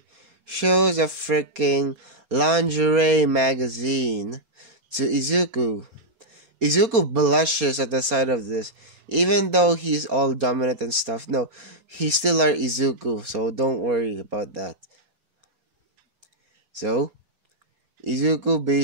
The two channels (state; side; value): late; left; 4.3 ms